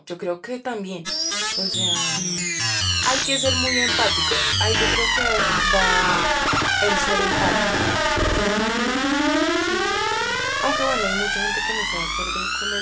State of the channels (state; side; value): identical; both; correlation 1.00